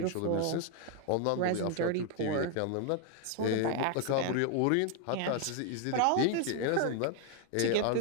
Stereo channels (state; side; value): different; both; correlation 0.01